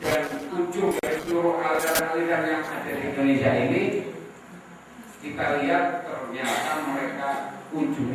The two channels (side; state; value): both; identical; correlation 1.00